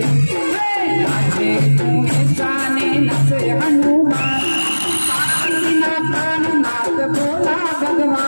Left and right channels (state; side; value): inverted; both; correlation -1.00